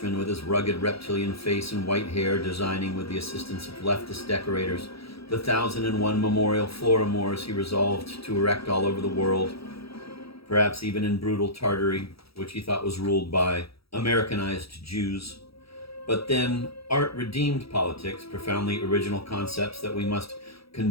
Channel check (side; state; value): right; late; 0.76 ms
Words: with his rugged reptilian face and white hair, designing with the assistance of leftist decorators the 1,001 memorial Florimores he resolved to erect all over the world, perhaps even in brutal Tartary, which he thought was ruled by Americanized Jews. But then, art redeemed politics, profoundly original concepts that we must